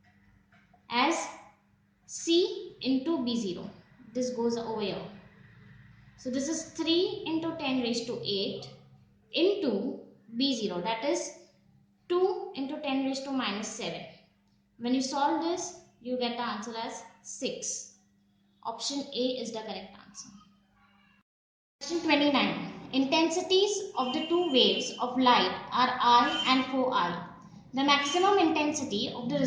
as C into B0. This goes over here. So this is 3 into 10 raised to 8 into B0, that is 2 into 10 raised to minus 7. When you solve this, you get the answer as 6. Option A is the correct answer. Question 29. Intensities of the two waves of light are I and 4I. The maximum intensity of the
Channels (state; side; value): identical; both; correlation 1.00